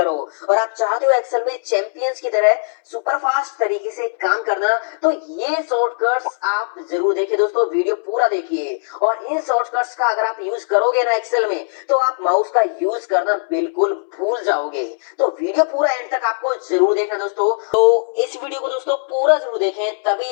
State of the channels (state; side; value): silent; right; 66 dB below the other